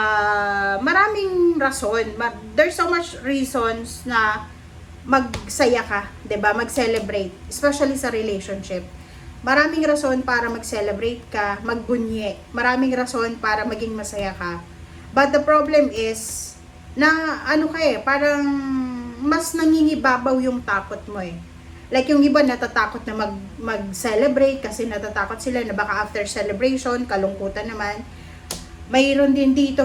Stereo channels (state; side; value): identical; both; correlation 1.00